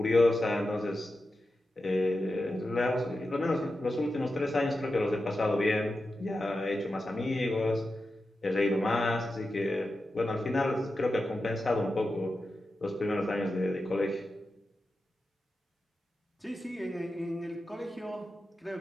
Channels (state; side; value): normal; both; correlation 0.91